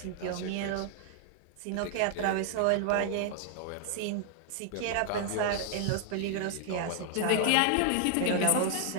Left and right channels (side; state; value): both; different; correlation 0.00